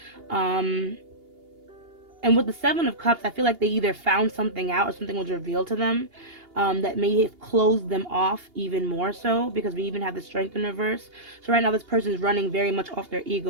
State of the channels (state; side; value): late; left; 2.8 ms